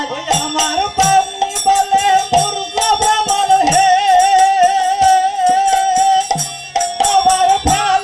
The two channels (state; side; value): identical; both; correlation 1.00